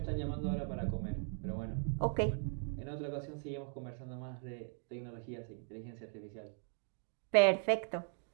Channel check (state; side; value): silent; left; 52 dB below the other